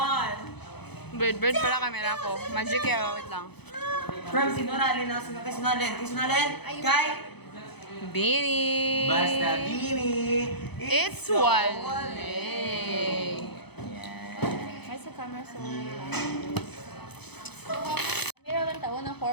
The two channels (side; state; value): right; late; 0.98 ms